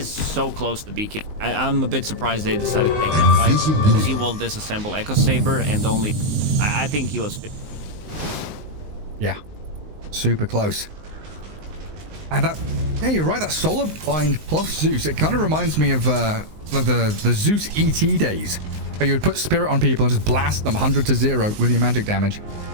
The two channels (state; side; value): late; left; 19 ms